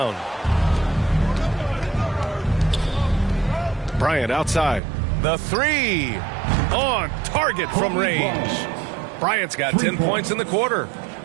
Bryant outside. The three on target from range. Bryant's got 10 points in the quarter.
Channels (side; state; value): left; drops out; at 4.8 s